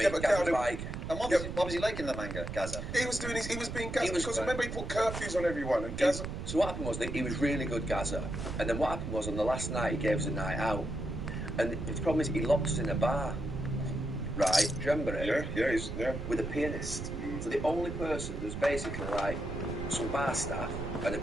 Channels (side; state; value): right; noise; rumble, 6 dB below the sound